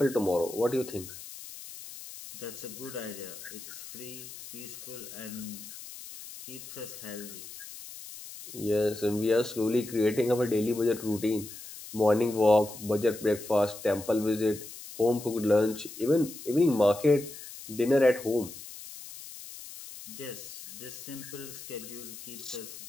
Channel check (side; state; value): left; noise; hiss, 13 dB below the sound